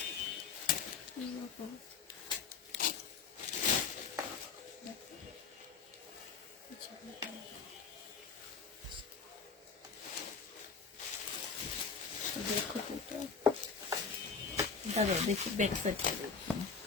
দেখো তো, দাঁড়াও দেখি ব্যাক সাইডটা দেখি।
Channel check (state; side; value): quieter; right; 5.4 dB